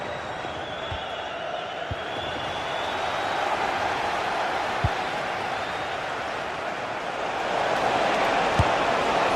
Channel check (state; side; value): identical; both; correlation 1.00